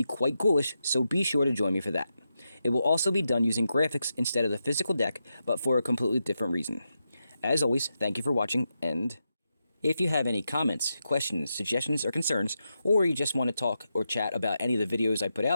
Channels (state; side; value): inverted; both; correlation -0.87